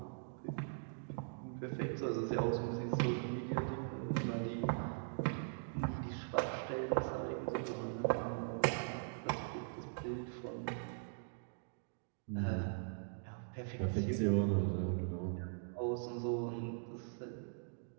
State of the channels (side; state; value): left; silent; digital silence